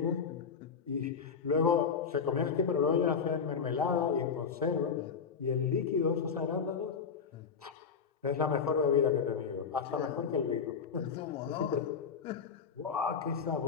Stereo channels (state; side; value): quieter; right; 6.2 dB